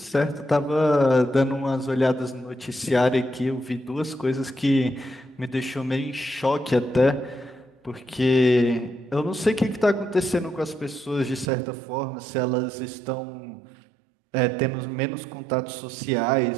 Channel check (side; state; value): left; drops out; at 11.5 s